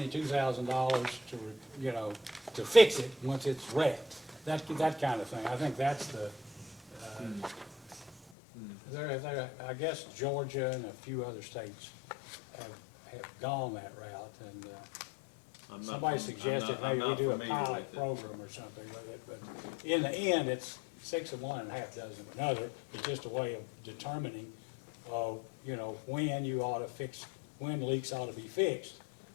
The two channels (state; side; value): drops out; right; at 8.2 s